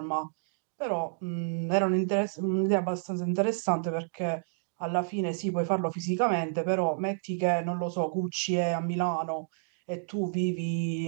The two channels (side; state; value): left; silent; digital silence